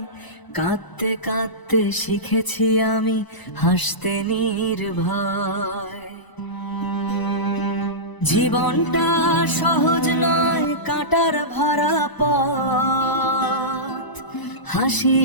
কাঁদতে কাঁদতে শিখেছি আমি হাসতে নির্ভয়। জীবনটা সহজ নয়, কাঁটার ভরা পথ।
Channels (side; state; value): right; late; 1.0 ms